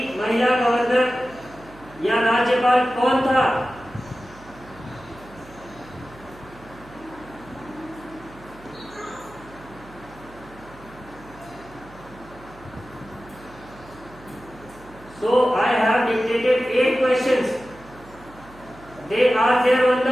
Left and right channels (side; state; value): right; noise; hum, 22 dB below the sound